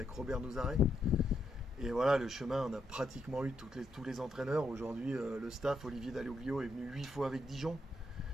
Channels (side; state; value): both; normal; correlation 0.79